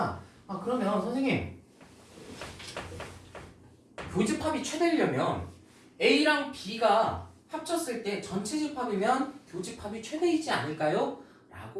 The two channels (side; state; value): both; identical; correlation 1.00